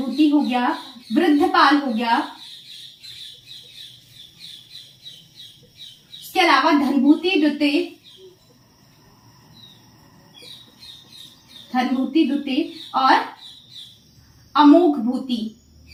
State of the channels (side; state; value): both; identical; correlation 1.00